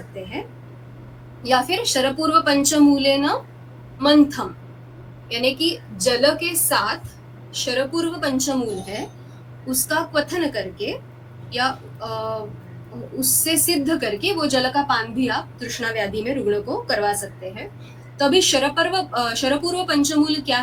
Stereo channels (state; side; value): identical; both; correlation 1.00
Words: हैं। या फिर शरपूर्व पंचमूलेन मंथम, यानी कि जल के साथ शरपूर्व पंचमूल है उसका क्वथन करके या उससे सिद्ध करके वो जल का पान भी आप तृष्णा व्याधि में रुग्ण को करवा सकते हैं। तो अभी शरपूर्व पंचमूल क्या